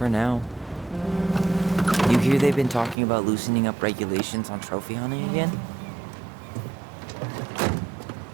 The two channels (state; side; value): drops out; left; at 3.0 s